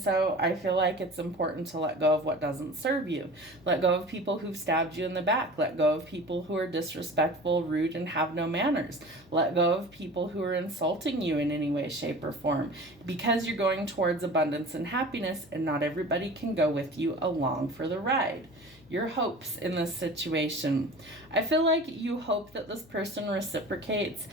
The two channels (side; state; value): left; noise; hum, 26 dB below the sound